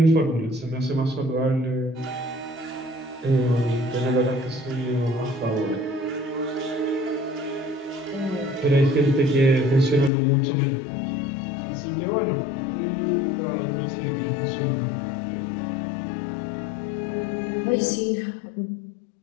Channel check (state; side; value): drops out; right; at 10.1 s